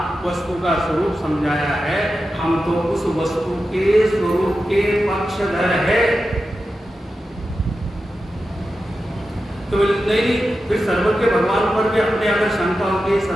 वस्तु का स्वरूप समझाया है, हम तो उस वस्तु के स्वरूप के पक्षधर है। तो नहीं, फिर सर्वज्ञ भगवान पर भी अपने अगर शंका होगी,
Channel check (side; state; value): both; normal; correlation 0.91